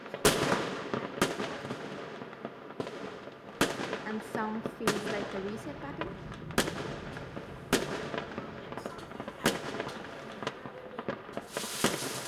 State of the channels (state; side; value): identical; both; correlation 1.00